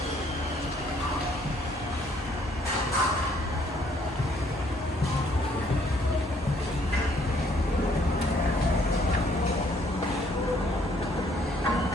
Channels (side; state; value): both; normal; correlation 0.64